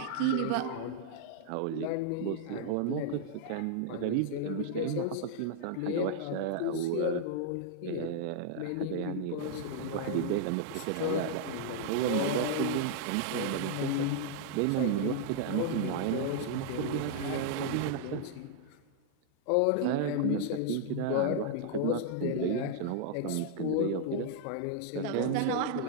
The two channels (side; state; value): both; different; correlation -0.01